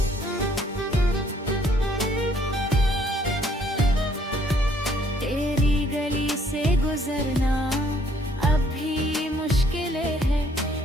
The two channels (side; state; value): both; normal; correlation 0.64